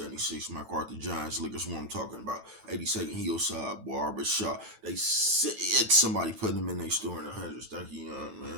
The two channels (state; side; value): late; left; 9.0 ms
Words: MacArthur Giants liquor. That's what I'm talking about. 82nd Hillside Barber Shop. They said somebody put them in their store in the hundreds. Thank you, young